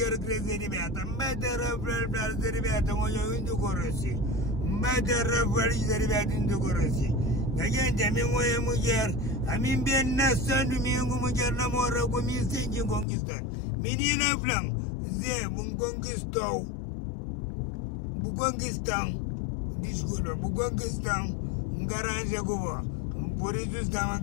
que se liberta. Vai ter a se liberta quando indo corresse. Vai ter a se liberta indo corresse. A gente a mim é mulher. A mim bem nascendo minha mulher namora comigo sem te conquistar. Menina Flam, Zé, conquistou. Conquistão. Desculpa, Buconquistão, garagem agora. Por isso estava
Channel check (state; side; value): drops out; right; at 13.1 s